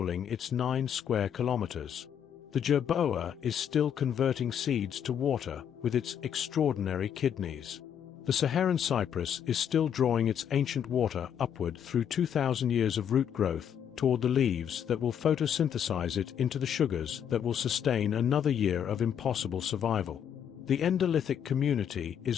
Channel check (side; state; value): right; quieter; 8.7 dB